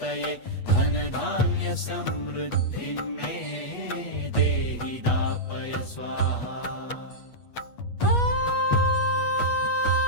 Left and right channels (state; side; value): late; right; 8.3 ms